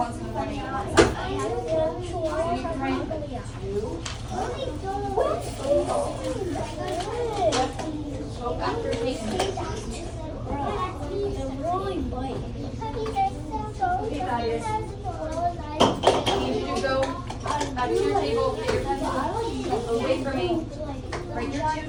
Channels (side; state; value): both; identical; correlation 1.00